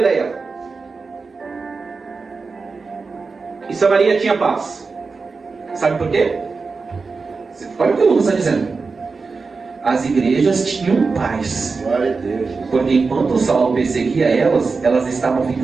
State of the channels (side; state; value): left; quieter; 4.4 dB